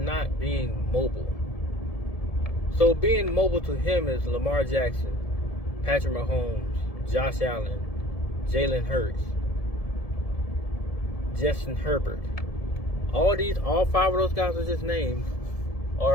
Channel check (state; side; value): late; right; 1.7 ms